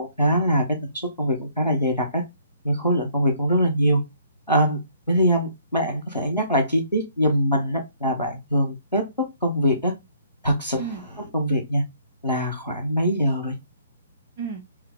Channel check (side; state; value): both; inverted; correlation -0.63